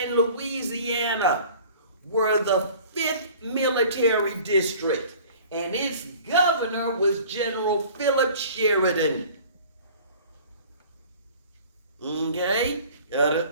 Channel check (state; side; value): inverted; both; correlation -0.46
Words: Louisiana were the 5th military district, and its governor was General Philip Sheridan. Okay? Got